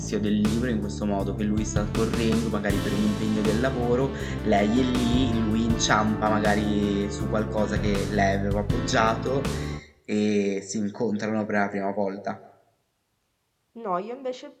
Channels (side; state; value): both; identical; correlation 1.00